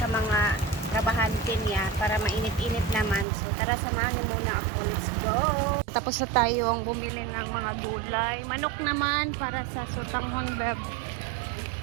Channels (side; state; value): left; drops out; at 3.2 s